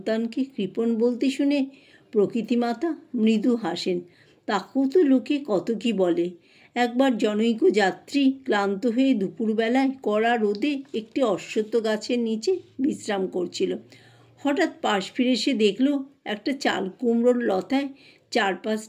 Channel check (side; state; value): both; identical; correlation 1.00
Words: কৃপণ বলতে শুনে প্রকৃতিমাতা মৃদু হাসেন। তাকেও তো লোকে কত কি বলে। একবার জনৈক যাত্রী ক্লান্ত হয়ে দুপুরবেলায় কড়া রোদে একটি অশ্বত্থ গাছের নিচে বিশ্রাম করছিল। হঠাৎ পাশ ফিরে সে দেখল একটা চাল কুমড়োর লতায়